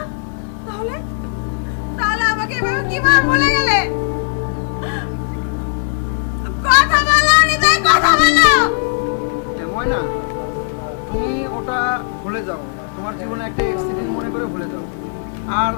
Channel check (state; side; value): silent; right; 56 dB below the other